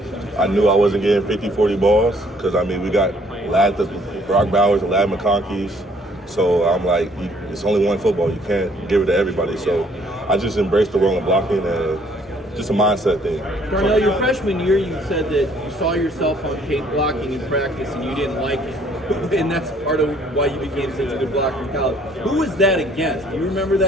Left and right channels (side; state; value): both; normal; correlation 0.62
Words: I knew I wasn't getting 50, 40 balls because, I mean, we got Brock Bowers and Lad McConkey's. So I'm like, it's only one football. You can't give it to everybody. So I just embraced the role of blocking and just a mindset thing. Darnell, your freshman year, you said that you saw yourself on tape blocking in practice and you didn't like it. And that's part of why you became such a good blocker in college. Who was that against? Do you remember